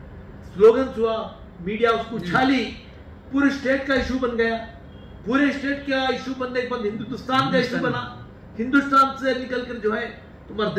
स्लोगन हुआ, मीडिया उसको उछाली, पूरे स्टेट का इशू बन गया। पूरे स्टेट का इशू बनने के बाद हिंदुस्तान का इशू बना। हिंदुस्तान से निकलकर जो है तुम्हारा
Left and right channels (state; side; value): identical; both; correlation 1.00